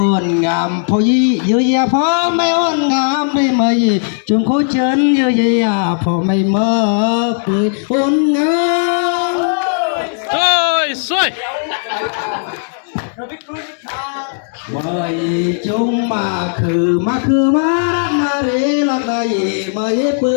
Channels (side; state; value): right; silent; digital silence